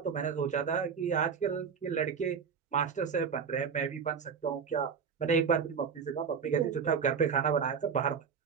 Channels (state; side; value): quieter; left; 6.4 dB